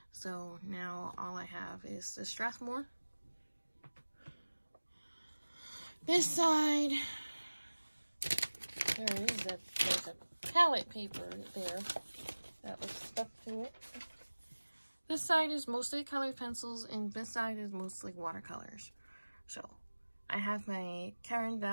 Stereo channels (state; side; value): inverted; both; correlation -1.00